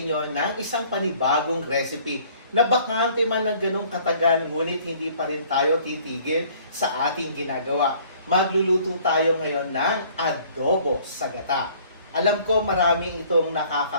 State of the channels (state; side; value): inverted; both; correlation -0.56